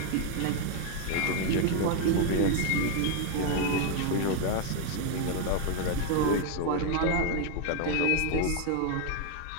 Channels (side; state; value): both; different; correlation 0.01